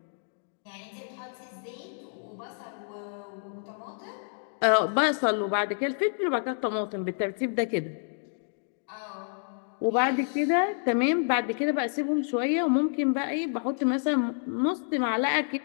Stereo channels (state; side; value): silent; right; digital silence